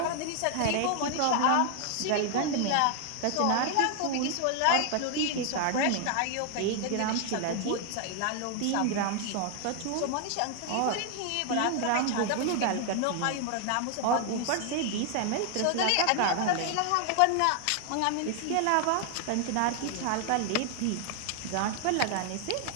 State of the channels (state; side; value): different; both; correlation 0.00